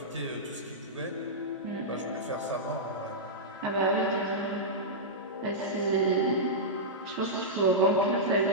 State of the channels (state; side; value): normal; both; correlation -0.11